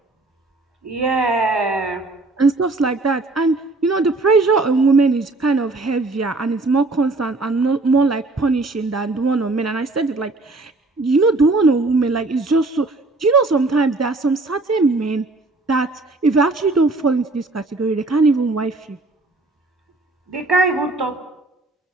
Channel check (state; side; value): quieter; left; 3.2 dB